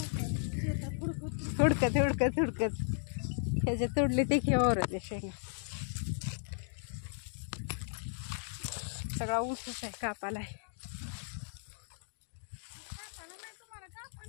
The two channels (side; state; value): right; silent; digital silence